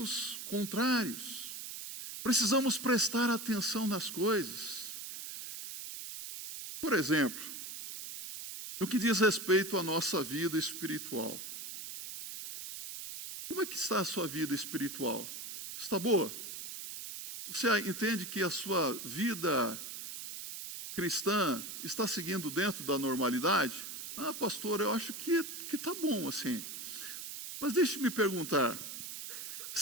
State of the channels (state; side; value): noise; right; hiss, 8 dB below the sound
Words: contrários. Precisamos prestar atenção nas coisas. Por exemplo, no que diz respeito à nossa vida espiritual. Como é que está a sua vida espiritual? Está boa? Você entende que a sua vida cristã está seguindo dentro da normalidade? Ah, pastor, eu acho que está bom assim. Mas deixe-me perguntar,